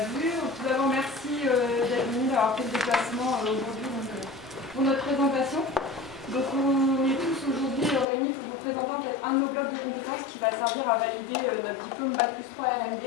vu. Tout d'abord, merci d'être venu, d'avoir fait le déplacement aujourd'hui pour notre présentation. Donc on est tous aujourd'hui réunis pour vous présenter en fait un de nos blocs de compétences qui va servir à valider notre diplôme Bac+3 RMD.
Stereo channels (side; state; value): right; drops out; at 8.1 s